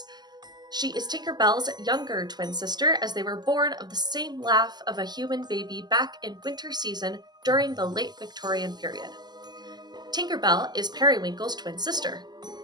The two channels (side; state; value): left; late; 0.20 ms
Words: She is Tinker Bell's younger twin sister, as they were born of the same laugh of a human baby back in winter season during the late Victorian period. Tinker Bell is Periwinkle's twin sister.